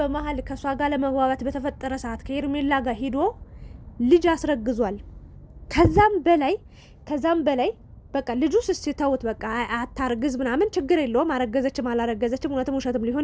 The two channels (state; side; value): identical; both; correlation 1.00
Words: ከሷ ጋር ለመግባባት በተፈጠረ ሰዓት ከሄርሜላ ጋር ሂዶ ልጅ አስረግዟል። ከዛም በላይ በቃ ልጁ ስስተውት በቃ አታርግዝ ምናምን ችግር የለውም አረገዘችም አላረገዘችም እውነትም ውሸትም